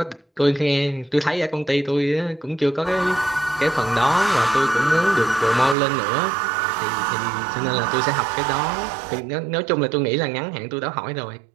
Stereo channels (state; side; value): drops out; left; at 5.8 s